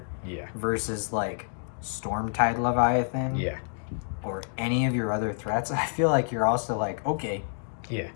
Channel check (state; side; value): silent; right; digital silence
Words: versus like Stormtide Leviathan, or any of your other threats, I feel like you're also like, okay,